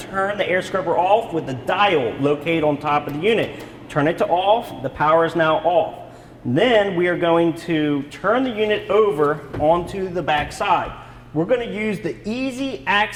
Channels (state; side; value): identical; both; correlation 1.00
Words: turn the air scrubber off with the dial located on top of the unit. Turn it to off, the power is now off. Then we are going to turn the unit over onto the back side. We're going to use the easy